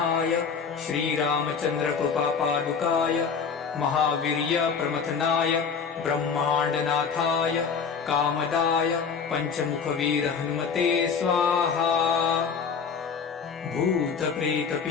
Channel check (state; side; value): quieter; right; 6.0 dB